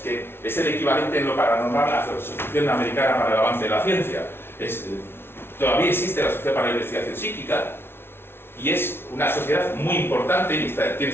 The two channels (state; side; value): late; right; 0.11 ms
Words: es el equivalente en lo paranormal a la Asociación Americana para el Avance de la Ciencia. Todavía existe la Sociedad para la Investigación Psíquica y es una sociedad muy importante y tenía